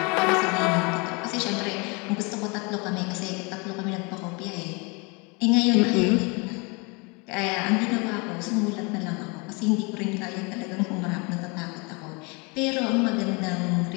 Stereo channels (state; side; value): quieter; right; 29.8 dB